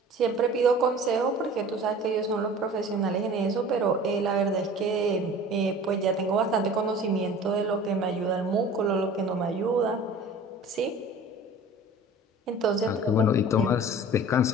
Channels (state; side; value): normal; both; correlation 0.43